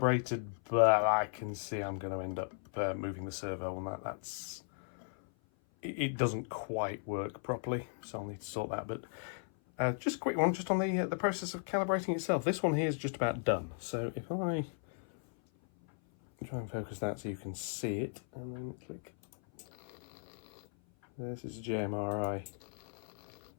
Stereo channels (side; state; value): right; silent; 54 dB below the other